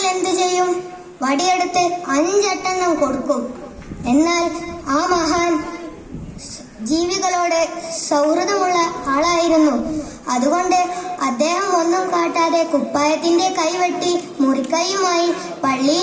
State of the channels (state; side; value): identical; both; correlation 1.00